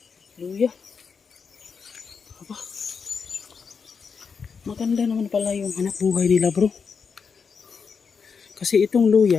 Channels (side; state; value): right; quieter; 5.8 dB